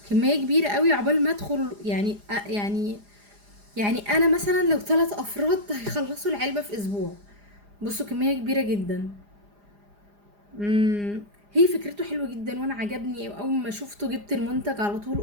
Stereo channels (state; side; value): late; left; 4.9 ms